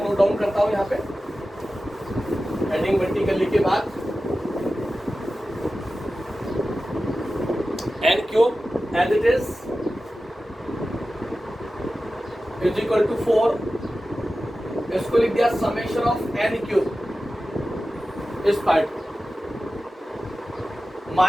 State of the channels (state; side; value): normal; both; correlation 0.94